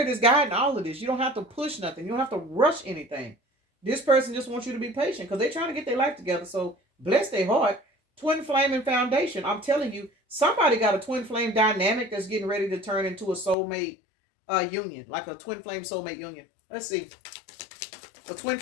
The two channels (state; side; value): drops out; right; at 13.6 s